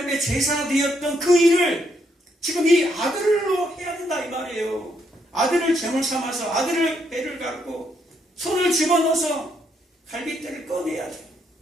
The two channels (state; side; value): normal; both; correlation 0.75